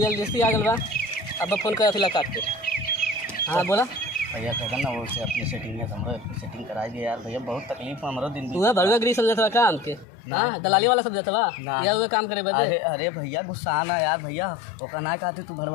आ गल बा। अब फोन करत हिला काट के। हाँ बोला भैया कहता ना वो से अपनी सेटिंग है, हमरो सेटिंग कराई दे यार भैया, बहुत तकलीफ में हमरो दिन तू है भड़ुआ गिरी समझत बा काम के? हाँ दलाली वाला समझत बा ना। या हुए काम करे बदे? अरे अरे भैया गुस्सा ना यार भैया, ओका ना कहते तू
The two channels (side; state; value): right; drops out; at 10.1 s